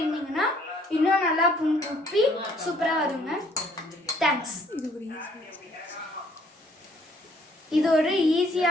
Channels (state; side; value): normal; both; correlation 0.62